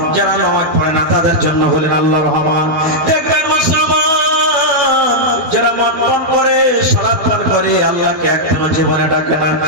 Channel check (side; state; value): left; late; 12 ms